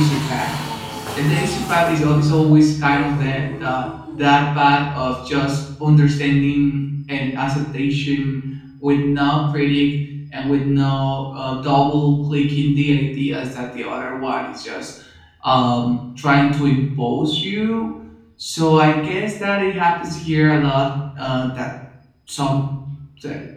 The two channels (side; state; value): both; identical; correlation 1.00